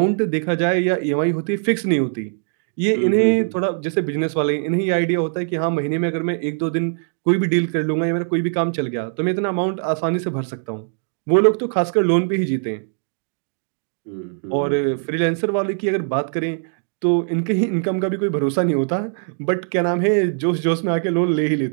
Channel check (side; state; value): left; silent; digital silence